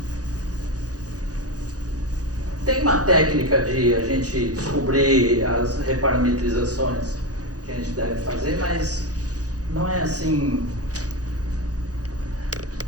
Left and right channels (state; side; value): late; left; 0.67 ms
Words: Tem uma técnica de a gente descobrir as reparametrizações que a gente deve fazer, mas não é assim.